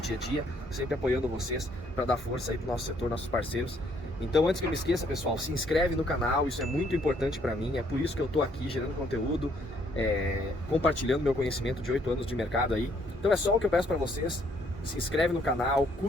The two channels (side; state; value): both; normal; correlation 0.67